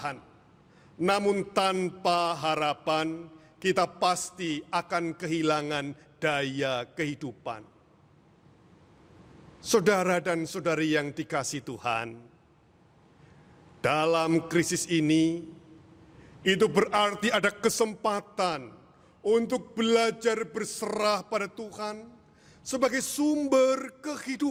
Namun tanpa harapan, kita pasti akan kehilangan daya kehidupan. Saudara dan saudari yang dikasihi Tuhan, dalam krisis ini, itu berarti ada kesempatan untuk belajar berserah pada Tuhan sebagai sumber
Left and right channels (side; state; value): both; identical; correlation 1.00